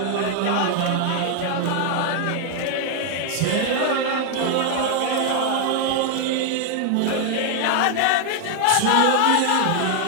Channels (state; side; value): different; both; correlation 0.00